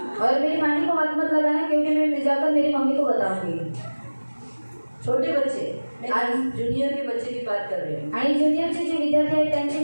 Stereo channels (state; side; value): inverted; both; correlation -1.00